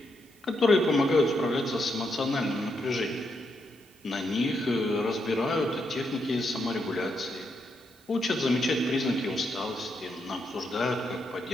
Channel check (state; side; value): normal; both; correlation 0.80